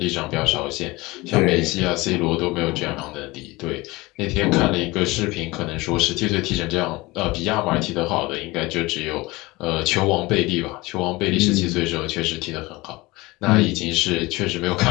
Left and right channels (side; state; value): right; quieter; 21.8 dB